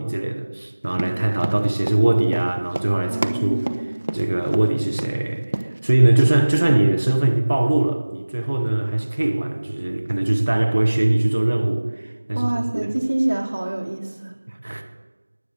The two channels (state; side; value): inverted; both; correlation -1.00